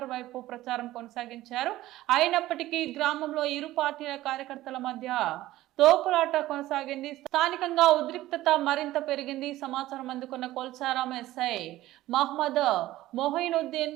వైపు ప్రచారం కొనసాగించారు. అయినప్పటికీ గ్రామంలో ఇరు పార్టీల కార్యకర్తల మధ్య తోపులాట కొనసాగింది. స్థానికంగా ఉద్రిక్తత మరింత పెరిగింది. సమాచారం అందుకున్న కొల్చారం ఎస్ఐ మహమ్మద్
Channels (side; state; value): left; quieter; 15.8 dB